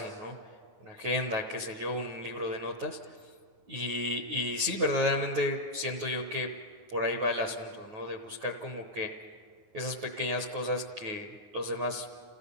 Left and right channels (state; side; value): late; left; 9.3 ms